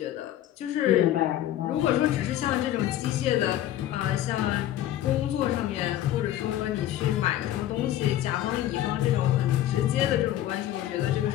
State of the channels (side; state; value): right; quieter; 12.8 dB